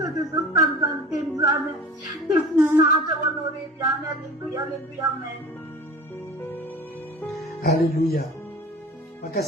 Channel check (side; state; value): both; normal; correlation 0.38